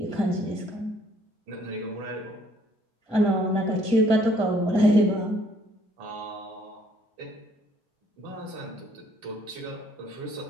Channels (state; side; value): normal; both; correlation 0.63